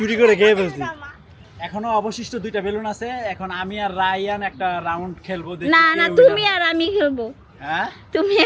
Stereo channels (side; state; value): both; identical; correlation 1.00